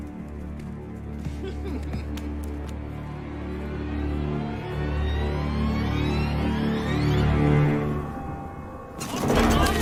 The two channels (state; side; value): identical; both; correlation 1.00